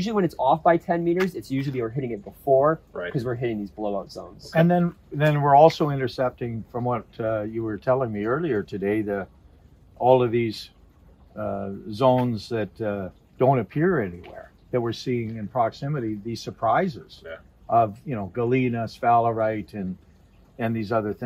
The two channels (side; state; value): both; identical; correlation 1.00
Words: when it's off by 10 meters, it's usually we're hitting it before because we're hitting these blowout zones. Okay. And then we're also intercepting, from what you were telling me earlier today, all of these zones that don't appear anywhere, that we're seeing in proximity, these surprises of, you know, galena, sphalerite, and these other